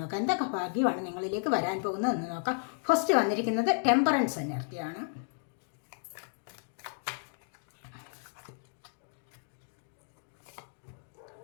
എന്തൊക്കെ ഭാഗ്യമാണ് നിങ്ങളിലേക്ക് വരാൻ പോകുന്നത് എന്ന് നോക്കാം. ഫസ്റ്റ് വന്നിരിക്കുന്നത് ടെമ്പറൻസ് എനർജിയാണ്.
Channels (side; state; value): right; silent; digital silence